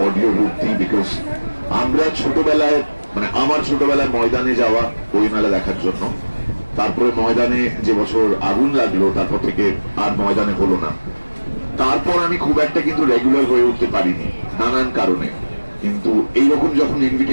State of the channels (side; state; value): both; inverted; correlation -1.00